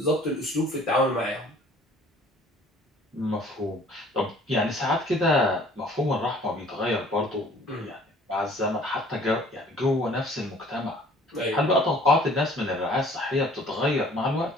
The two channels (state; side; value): normal; both; correlation 0.53